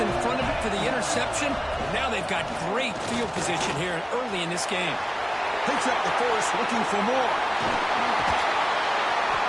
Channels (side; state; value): both; identical; correlation 1.00